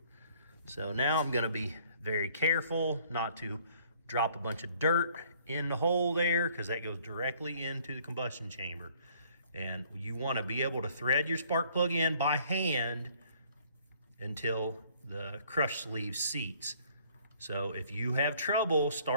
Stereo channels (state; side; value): inverted; both; correlation -0.60